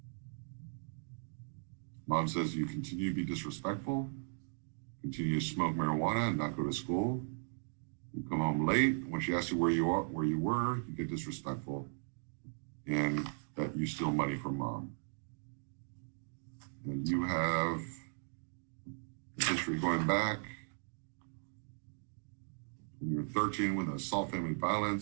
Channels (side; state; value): left; silent; digital silence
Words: Mom says you continue to be disrespectful, continue to smoke marijuana and not go to school. You come home late. When she asks you where you were, you get disrespectful, and that you steal money from Mom. And you have history going back when you were 13 with assault, family